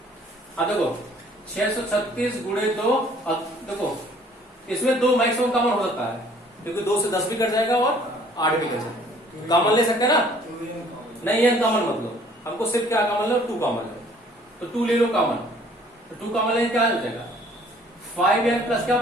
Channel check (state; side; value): normal; both; correlation 0.57